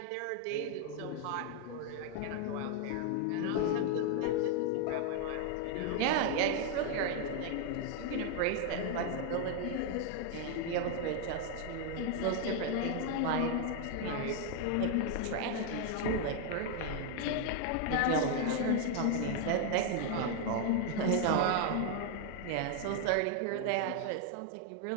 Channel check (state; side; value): different; both; correlation 0.00